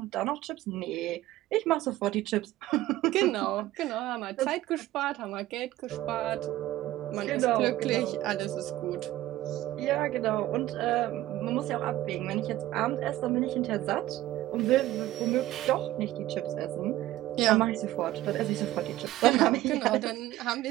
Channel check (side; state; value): left; quieter; 15.4 dB